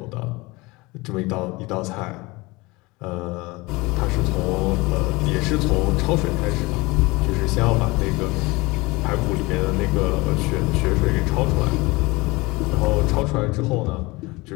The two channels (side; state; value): right; quieter; 23.3 dB